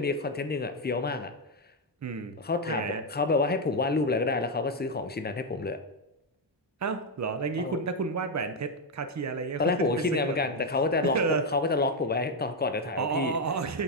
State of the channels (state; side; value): normal; both; correlation 0.03